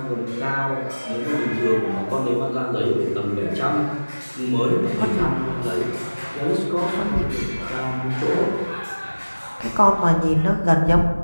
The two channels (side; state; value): both; inverted; correlation -1.00